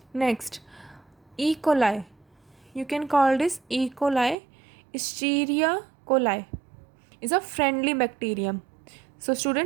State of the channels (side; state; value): left; drops out; at 4.4 s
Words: Next, E. coli. You can call this E. coli. Escherichia coli is a friendly bacterium. So